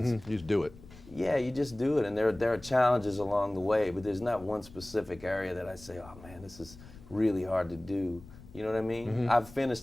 You just do it. Yeah, you just do it, and there are challenges along the way, but there's not one specific area that I say, oh man, this is really hard to do. You know what I mean? I've finished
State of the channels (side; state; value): left; noise; rumble, 20 dB below the sound